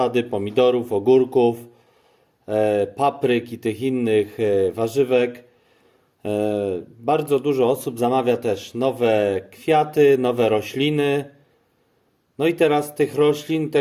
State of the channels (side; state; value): both; identical; correlation 1.00